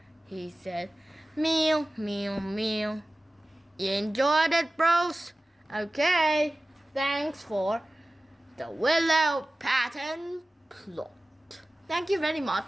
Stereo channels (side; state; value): both; normal; correlation 0.96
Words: he said. Meow, meow, meow. You enjoyed it, bros? Okay, thanks for the Willow pattern plot. Thank you very